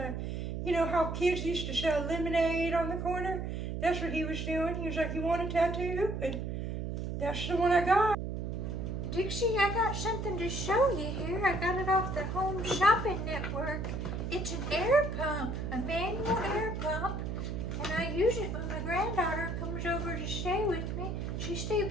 you know how kids used to sell lemonade on the corner? That's what he was doing. He was like, you want a tattoo? And that's the one I got. Dixie, I got something to show you here. I got it off the Home Shopping Network. It's an air pump, a manual air pump, and I use it when my granddaughter comes over to stay with me. She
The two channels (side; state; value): right; noise; hum, 3 dB below the sound